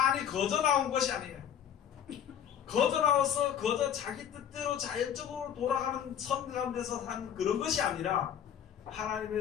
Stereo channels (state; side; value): quieter; right; 9.2 dB